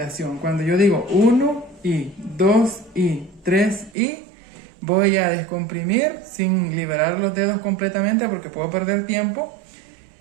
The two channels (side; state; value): left; drops out; at 3.9 s